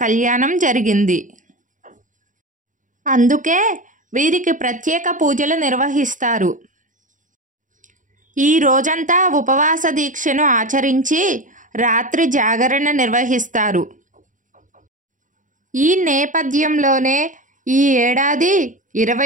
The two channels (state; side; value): late; left; 0.37 ms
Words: కళ్యాణం జరిగింది. అందుకే వీరికి ప్రత్యేక పూజలు నిర్వహిస్తారు. ఈ రోజంతా ఉపవాస దీక్షను ఆచరించి రాత్రి జాగరణ నిర్వహిస్తారు. ఈ నేపథ్యంలోనే ఈ ఏడాది